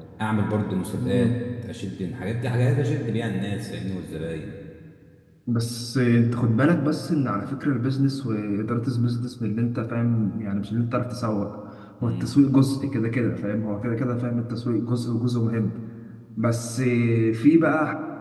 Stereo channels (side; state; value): both; identical; correlation 1.00